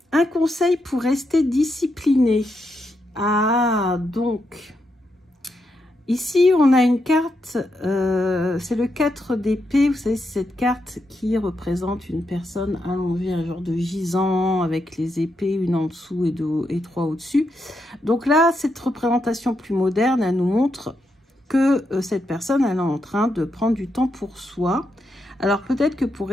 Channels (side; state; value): both; normal; correlation 0.82